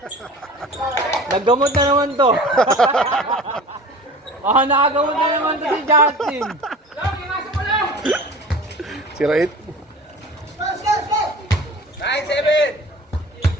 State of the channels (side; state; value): both; normal; correlation 0.40